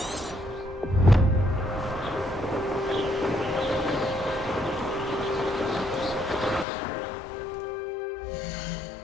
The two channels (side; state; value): right; drops out; at 6.7 s